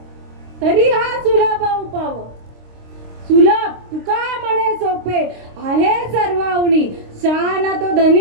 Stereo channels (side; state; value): left; late; 26 ms